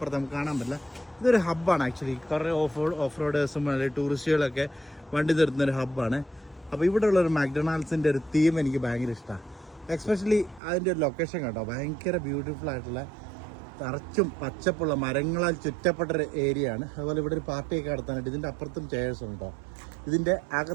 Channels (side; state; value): left; drops out; at 10.6 s